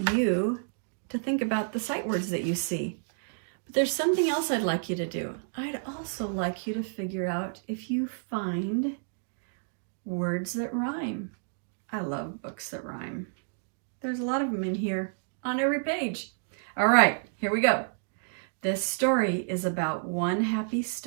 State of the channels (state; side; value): silent; left; digital silence